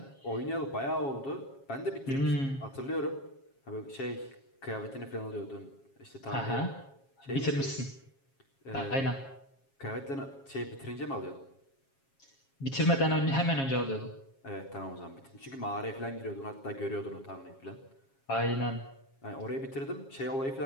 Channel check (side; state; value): right; late; 7.3 ms